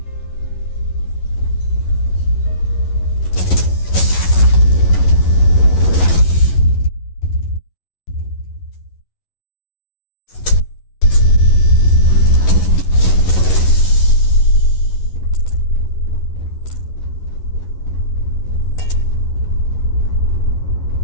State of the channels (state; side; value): late; right; 11 ms